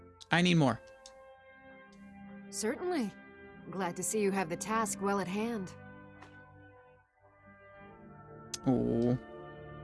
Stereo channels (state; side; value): identical; both; correlation 1.00